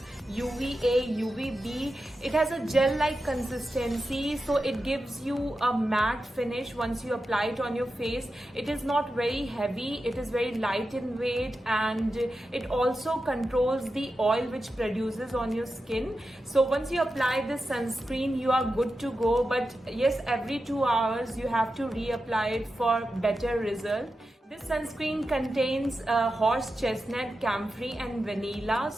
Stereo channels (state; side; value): normal; both; correlation 0.91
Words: UVA, UVB. It has a gel-like consistency, so it gives you a matte finish once you apply it on your face. It is not very heavy, it is very light in weight, and it also controls the oil which produces on your skin. So once you apply this sunscreen, you are good to go. But yes, every 2 hours you have to reapply it for better result. This sunscreen contains horse chestnut, camphor and vanilla,